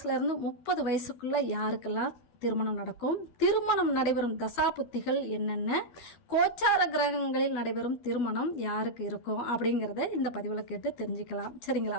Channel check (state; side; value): late; right; 12 ms